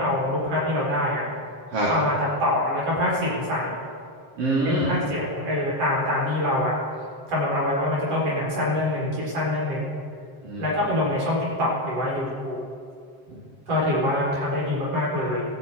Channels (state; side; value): late; left; 7.6 ms